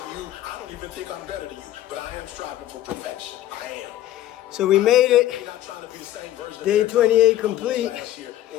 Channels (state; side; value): quieter; right; 13.4 dB